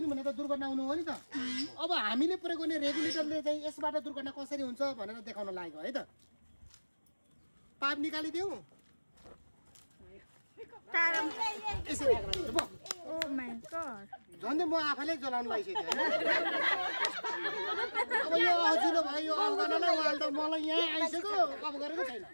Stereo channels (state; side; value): inverted; both; correlation -1.00